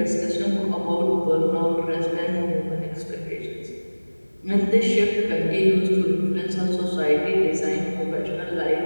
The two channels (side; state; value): both; inverted; correlation -1.00